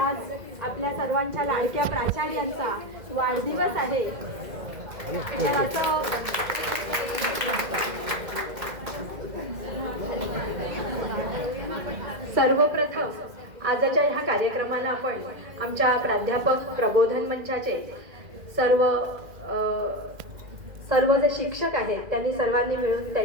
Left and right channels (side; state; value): left; late; 2.0 ms